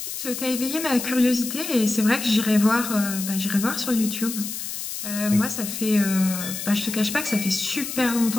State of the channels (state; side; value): noise; left; hiss, 6 dB below the sound